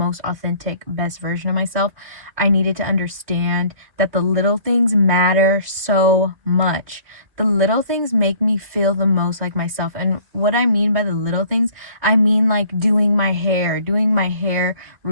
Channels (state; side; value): late; left; 2.5 ms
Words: authentic, best version of myself, I needed to understand that the little things matter so much. The little things make me feel the most like myself. And what I mean by the little things, I mean like doing my hair